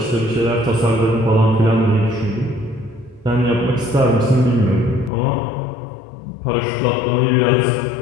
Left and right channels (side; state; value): right; drops out; at 5.1 s